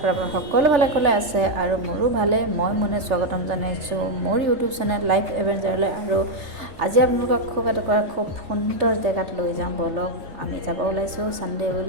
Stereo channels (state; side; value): late; left; 3.5 ms